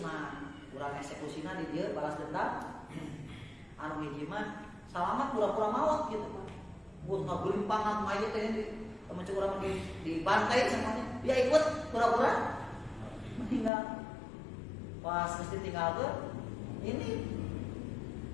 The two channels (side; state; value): right; drops out; at 13.7 s